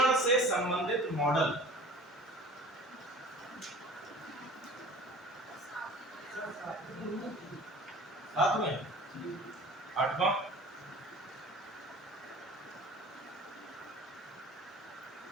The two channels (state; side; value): normal; both; correlation 0.43